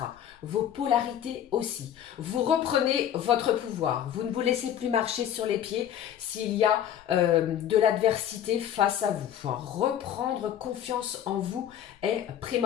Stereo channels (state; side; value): quieter; right; 10.2 dB